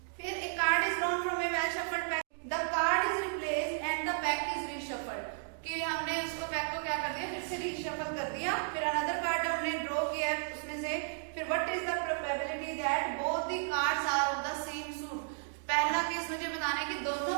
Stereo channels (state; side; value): silent; left; digital silence